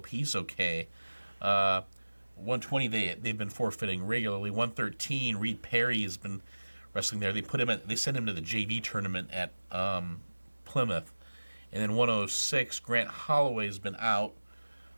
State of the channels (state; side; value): inverted; both; correlation -1.00